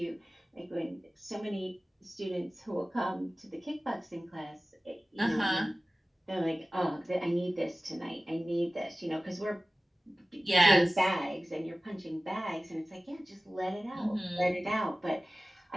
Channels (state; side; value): normal; both; correlation 0.97